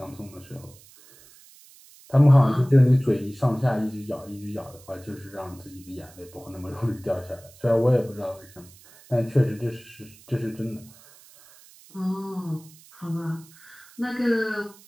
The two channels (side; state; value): right; noise; hiss, 24 dB below the sound